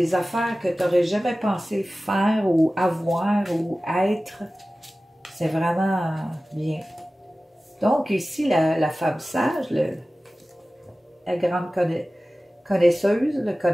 affaires que tu n'aurais jamais pensé faire ou avoir ou être. C'est vraiment bien. Donc ici, la femme sage, la grande connaisseuse, le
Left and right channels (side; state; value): both; normal; correlation 0.96